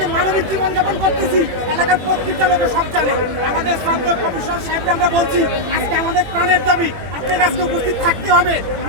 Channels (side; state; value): left; late; 21 ms